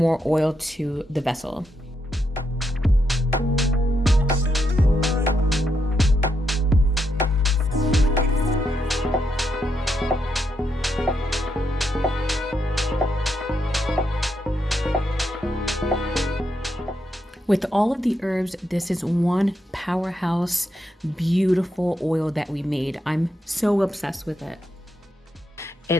oil to the vessel. With all of the herbs, this is one powerhouse, beautiful oil that we made. I'm so obsessed with it.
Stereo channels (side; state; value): both; normal; correlation 0.81